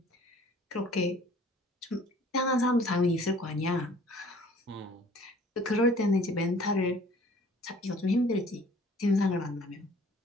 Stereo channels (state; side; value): normal; both; correlation 0.53